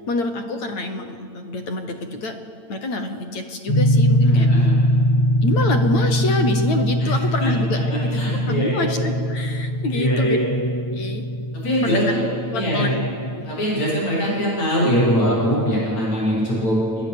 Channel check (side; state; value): right; late; 8.8 ms